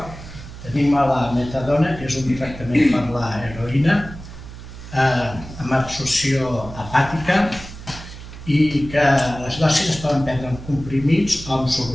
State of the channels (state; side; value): noise; right; hum, 14 dB below the sound